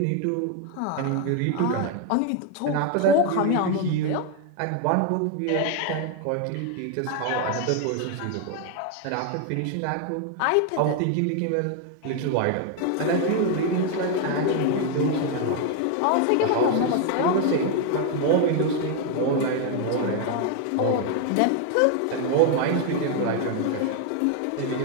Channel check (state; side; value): different; both; correlation 0.01